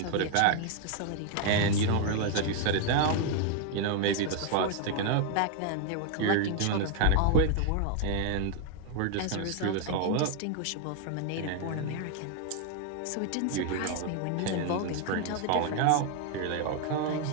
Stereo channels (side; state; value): both; different; correlation 0.00